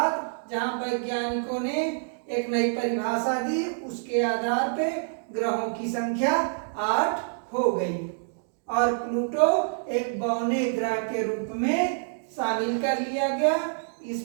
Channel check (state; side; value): silent; left; digital silence